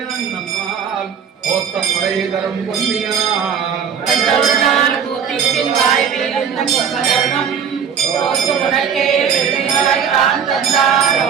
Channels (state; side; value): quieter; left; 7.4 dB